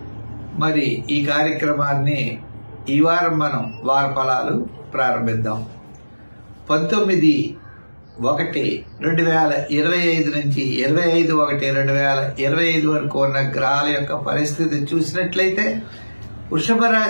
మరి ఈ కార్యక్రమాన్ని ఈ వారం మనం వార ఫలాలు ప్రారంభిద్దాం. 19/1/2025 నుంచి 25/1/2025 వరకు ఉన్న గ్రహాల యొక్క పరిస్థితి చూసినట్లయితే వృషభ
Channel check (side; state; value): both; inverted; correlation -1.00